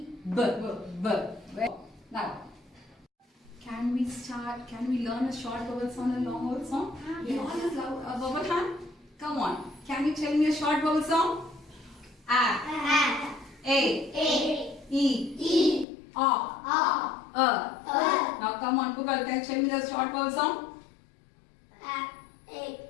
Now, can we learn a short vowel sound and long vowel sound? We all use a vowel hand. Come on. Can you tell me a short vowel sound? A. E. Now come on, Pukal, can you tell me the short vowel sound?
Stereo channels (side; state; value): right; drops out; at 15.9 s